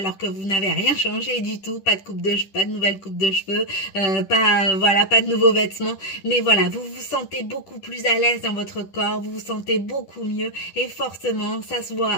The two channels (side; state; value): right; late; 10 ms